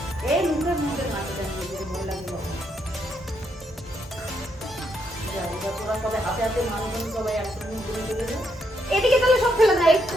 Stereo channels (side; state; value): both; normal; correlation 0.77